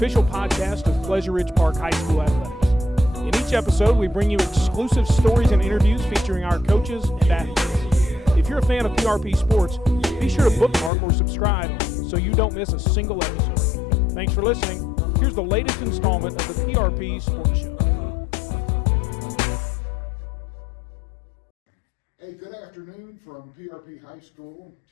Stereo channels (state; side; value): drops out; right; at 10.9 s